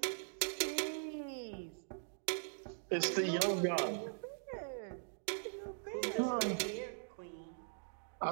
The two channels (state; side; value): silent; left; digital silence